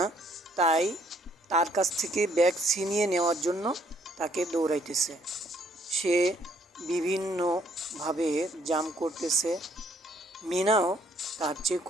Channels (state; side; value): normal; both; correlation 0.66